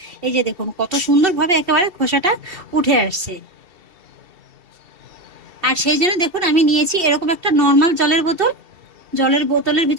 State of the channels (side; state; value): left; late; 2.7 ms